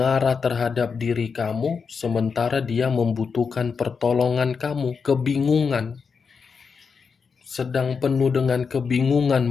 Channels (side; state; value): right; quieter; 5.6 dB